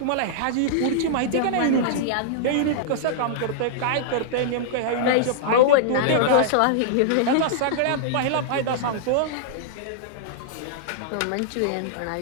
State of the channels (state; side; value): different; both; correlation -0.02